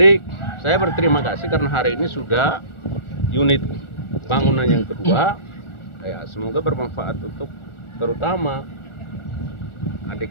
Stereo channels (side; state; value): right; late; 1.4 ms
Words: saya berterima kasih karena hari ini sudah unit bangunan yang kedua. Ya, semoga bermanfaat untuk terutama